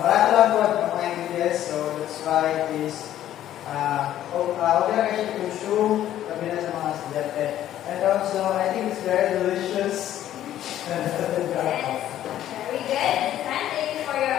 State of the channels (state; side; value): quieter; right; 12.1 dB